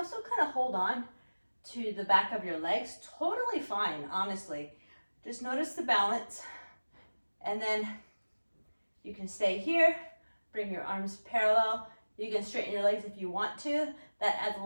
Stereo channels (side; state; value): both; inverted; correlation -1.00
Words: kind of hold on to the back of your legs. Totally fine, honestly. Just notice the balance. And then you can stay here, bring your arms parallel. You can straighten your legs if you want to. That adds a